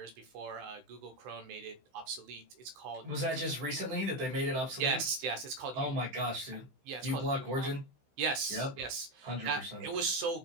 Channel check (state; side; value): late; left; 16 ms